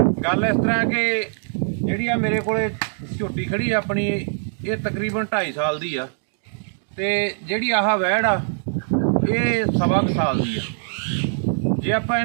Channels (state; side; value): silent; left; digital silence